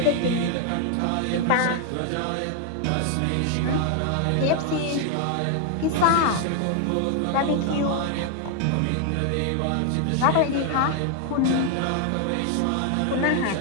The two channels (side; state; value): both; different; correlation 0.00